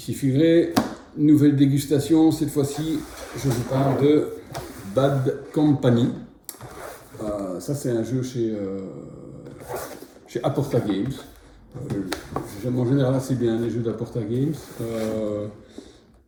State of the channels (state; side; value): identical; both; correlation 1.00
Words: Figré, nouvelle dégustation. Cette fois-ci, je vous parle de Bad Company. Ça, c'est un jeu chez Aporta Games. J'aime en général assez bien les jeux d'Aporta Games.